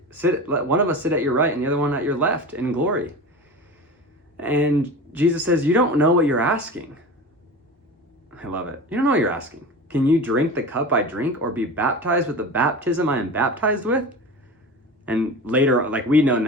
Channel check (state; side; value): normal; both; correlation 0.31